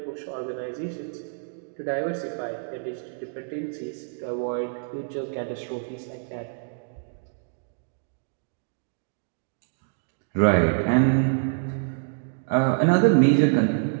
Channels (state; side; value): silent; left; digital silence